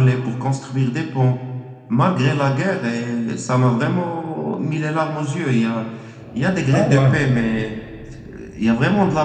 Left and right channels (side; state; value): both; identical; correlation 1.00